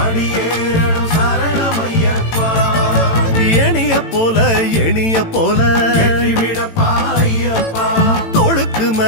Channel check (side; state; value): right; late; 18 ms